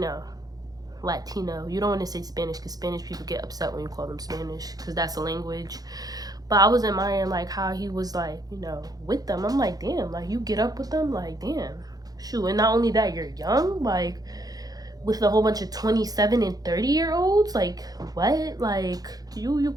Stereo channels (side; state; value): left; late; 0.18 ms